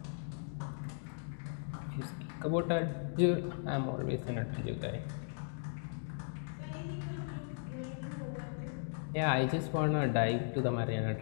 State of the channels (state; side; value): silent; right; digital silence